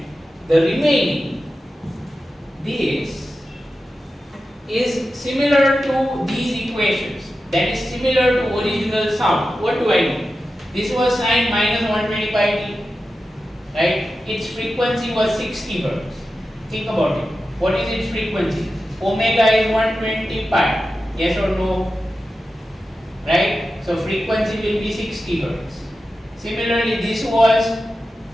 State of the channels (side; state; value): both; normal; correlation 0.92